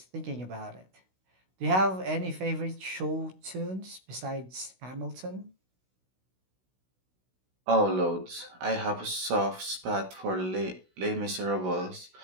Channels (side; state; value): left; late; 16 ms